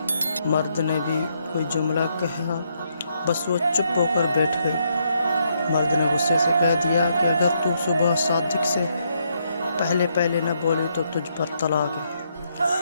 مرد نے بھی کوئی جملہ کہا، بس وہ چپ ہو کر بیٹھ گئی۔ مرد نے غصے سے کہہ دیا کہ اگر تو صبح صادق سے پہلے نہ بولی تو تجھ پر طلاق ہے۔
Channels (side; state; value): both; inverted; correlation -0.75